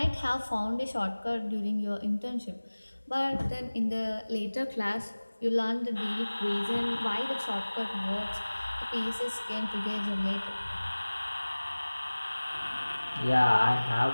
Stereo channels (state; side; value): inverted; both; correlation -1.00